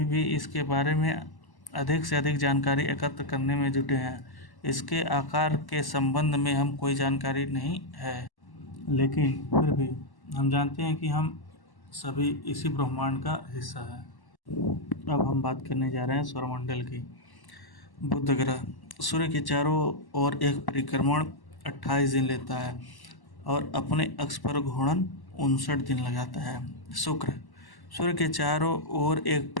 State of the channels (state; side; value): late; right; 1.1 ms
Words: भी इसके बारे में अधिक से अधिक जानकारी एकत्र करने में जुटे हैं। इसके आकार के संबंध में हम कोई जानकारी नहीं है, लेकिन फिर भी हम जानते हैं कि हम सभी इसी ब्रह्मांड का हिस्सा है। अब हम बात करने जा रहे हैं सौरमंडल की। बुध ग्रह सूर्य के चारों ओर एक परिक्रमण 28 दिन लेता है और अपने अक्ष पर घूर्णन 59 दिन लगाता है। शुक्र सूर्य के चारों ओर एक